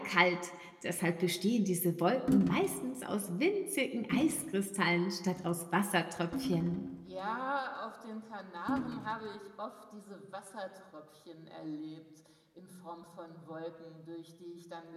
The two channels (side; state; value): both; identical; correlation 1.00